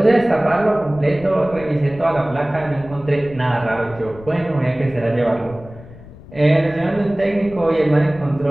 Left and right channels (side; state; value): left; noise; rumble, 18 dB below the sound